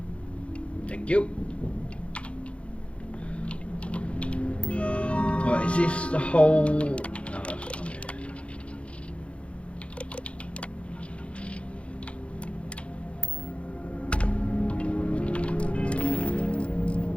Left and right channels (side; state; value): right; late; 0.061 ms